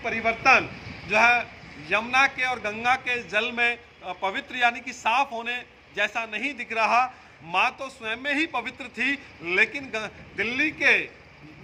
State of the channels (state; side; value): identical; both; correlation 1.00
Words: जो है यमुना के और गंगा के जल में पवित्र यानी कि साफ होने जैसा नहीं दिख रहा। माँ तो स्वयं में ही पवित्र थी, लेकिन दिल्ली के